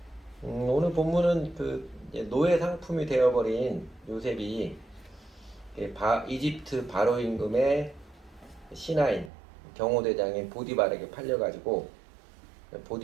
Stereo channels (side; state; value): left; drops out; at 9.3 s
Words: 오늘 본문은 이제 노예 상품이 되어버린 요셉이 이집트 바로 임금의 신하인 경호대장인 보디발에게 팔려가지고